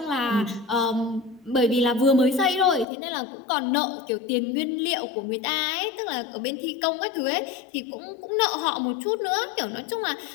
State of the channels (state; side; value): drops out; right; at 2.9 s